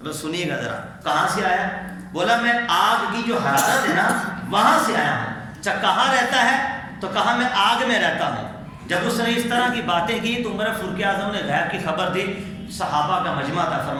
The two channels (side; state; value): both; identical; correlation 1.00